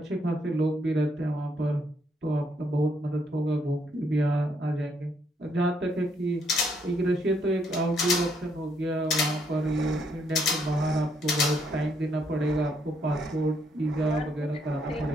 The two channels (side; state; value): both; normal; correlation 0.72